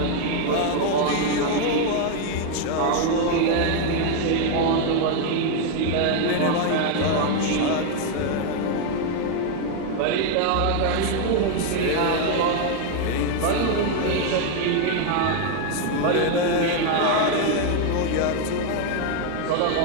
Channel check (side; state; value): both; different; correlation 0.01